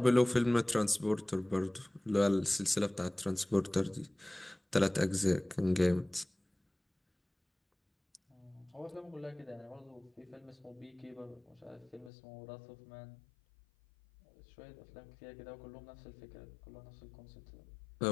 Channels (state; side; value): drops out; right; at 12.1 s